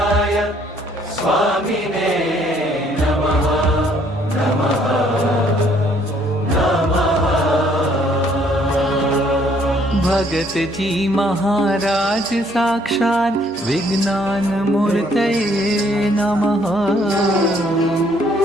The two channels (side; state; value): both; normal; correlation 0.64